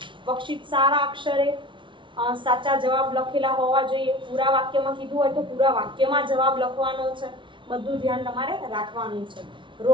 વર્કશીટ સારા અક્ષરે સાચા જવાબ લખેલા હોવા જોઈએ. પૂરા વાક્યમાં કીધું હોય તો પૂરા વાક્યમાં જવાબ લખવાનો છે. બધું ધ્યાન તમારે રાખવાનું છે.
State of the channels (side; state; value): left; late; 0.24 ms